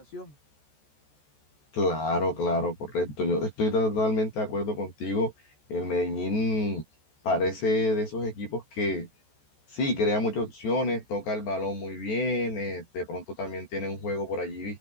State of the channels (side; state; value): right; late; 14 ms